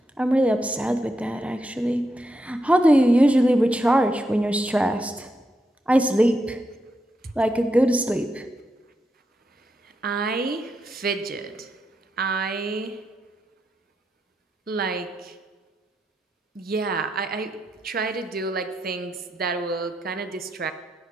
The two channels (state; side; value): normal; both; correlation 0.84